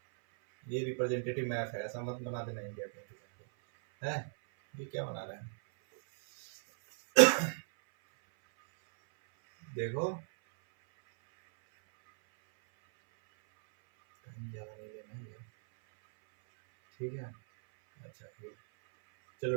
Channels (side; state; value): left; silent; 54 dB below the other